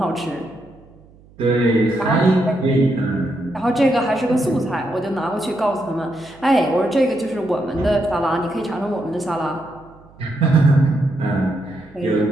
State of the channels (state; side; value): noise; right; hum, 26 dB below the sound